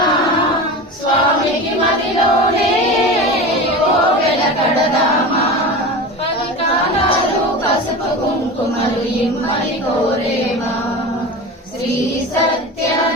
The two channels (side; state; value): both; normal; correlation 0.29